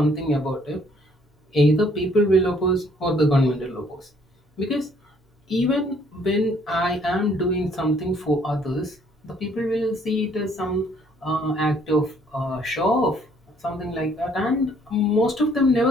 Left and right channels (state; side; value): normal; both; correlation 0.63